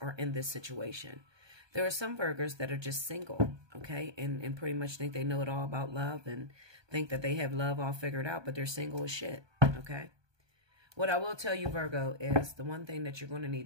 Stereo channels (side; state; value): left; late; 1.2 ms